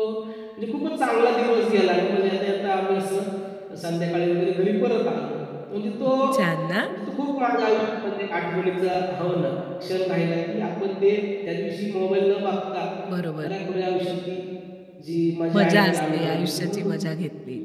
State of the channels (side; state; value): both; identical; correlation 1.00